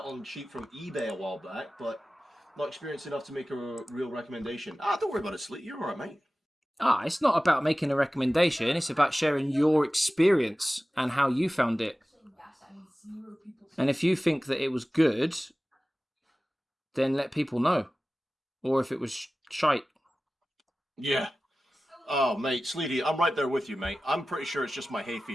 cheap from eBay a while back, but not experienced enough to make a real recommendation. Don't worry about it, Sleet. You're alright, mate. It's not about making a recommendation. It's about sharing your experience and how you found it. And if you think that it was good, then let people know. Or if it was shite. Yeah. Oh, mate, Sleety, I'm right there with you, mate. I'm pretty sure it's just my hay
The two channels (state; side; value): normal; both; correlation 0.96